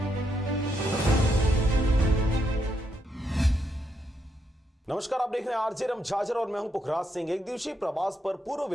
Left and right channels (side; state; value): both; normal; correlation 0.79